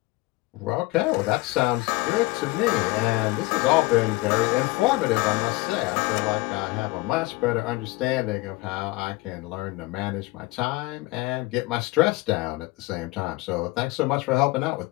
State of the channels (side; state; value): right; quieter; 21.6 dB